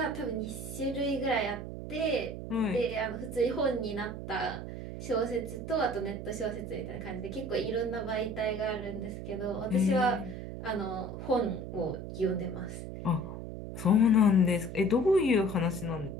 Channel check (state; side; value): noise; right; hum, 8 dB below the sound